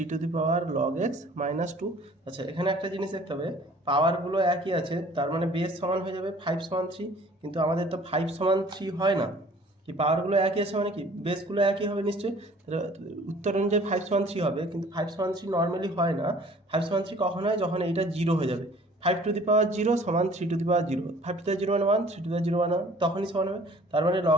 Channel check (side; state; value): both; normal; correlation 0.52